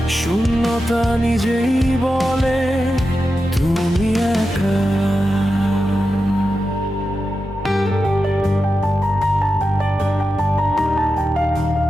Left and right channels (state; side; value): normal; both; correlation 0.90